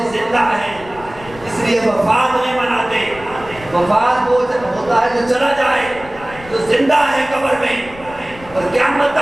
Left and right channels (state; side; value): noise; left; rumble, 19 dB below the sound